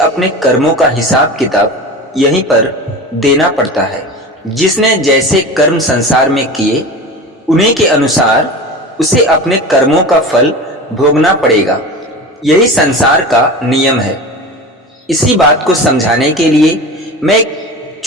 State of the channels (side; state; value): both; normal; correlation 0.31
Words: कर्मों का हिसाब किताब यहीं पर देना पड़ता है। जिसने जैसे कर्म संसार में किए उन्हीं के अनुसार उसे अपने कर्मों का फल भोगना पड़ेगा। यही संसार का नियम है। इसी बात को समझाने के लिए मैं एक